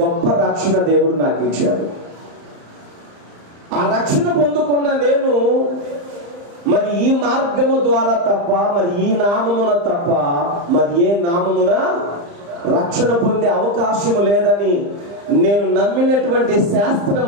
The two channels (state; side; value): late; left; 35 ms